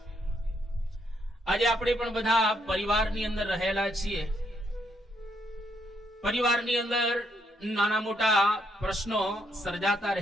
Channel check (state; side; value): normal; both; correlation 0.75